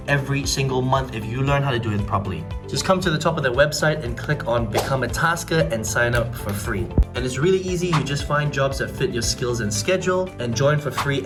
every single month if you learn how to do it properly. Just come to the top of their website and click on Become a Tasker and sign up for free. And it's really easy. You just find jobs that fit your skills and schedule and join for free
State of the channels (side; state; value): both; identical; correlation 1.00